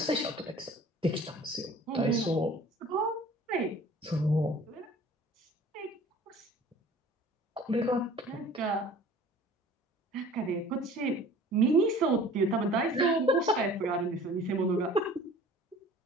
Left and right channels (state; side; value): normal; both; correlation 0.47